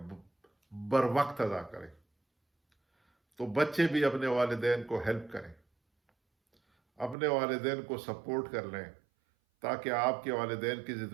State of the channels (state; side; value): drops out; left; at 7.2 s